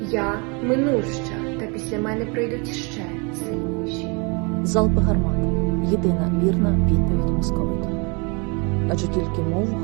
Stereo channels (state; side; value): quieter; left; 31.6 dB